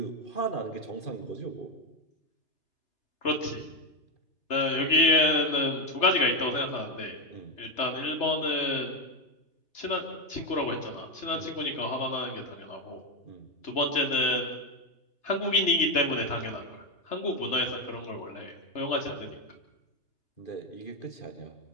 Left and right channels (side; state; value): right; late; 3.3 ms